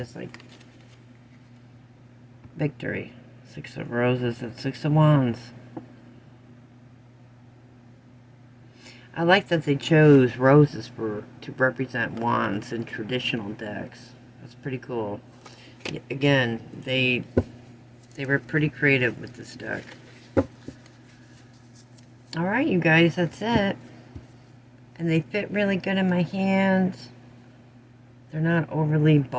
like victory. 6 of Roses and 6 of Wands. I like that they chose roses to represent wands in traditional decks. That's pretty cool. Again, they were pretty creative with this deck. Alright, you guys, that's it. And they fit really good in my hands. They're not overly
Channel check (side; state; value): both; identical; correlation 1.00